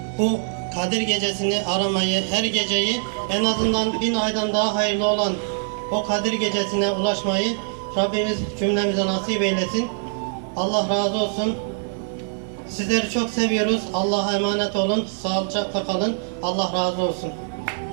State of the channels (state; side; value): silent; left; 63 dB below the other